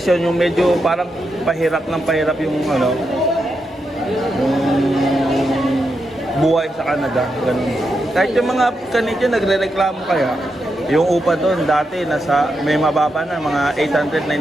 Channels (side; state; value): both; normal; correlation 0.85